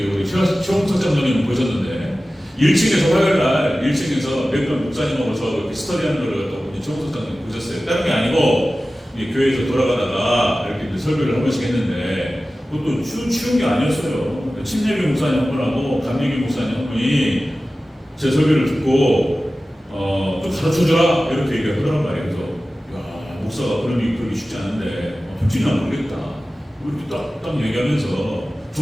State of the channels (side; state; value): both; normal; correlation 0.96